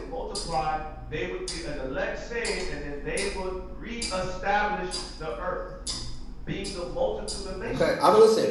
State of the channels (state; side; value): identical; both; correlation 1.00